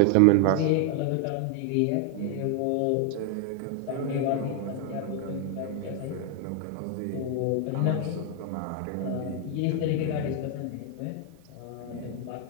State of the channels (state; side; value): different; both; correlation 0.00